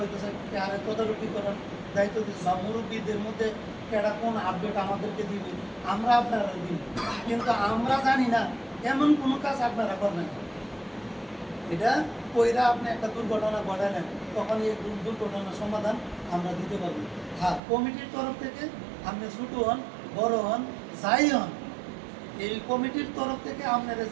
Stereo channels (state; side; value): drops out; left; at 17.6 s